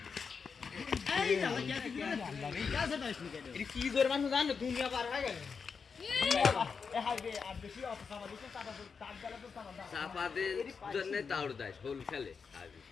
এই যা कैसे था इसमें এটা কি জোর মানুষ জানো দুনিয়া পার হয়ে গেল ए हाई बे আর বেশি অফিসার দিছে তার গেলে তো সামান দাও চাপাদের জন্য তাউর দেয় হোল খেলে হাবি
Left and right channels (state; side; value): quieter; right; 5.6 dB